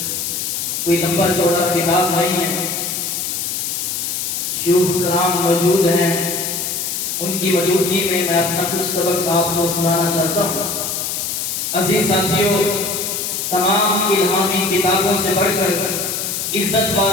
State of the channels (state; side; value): noise; left; hiss, 2 dB below the sound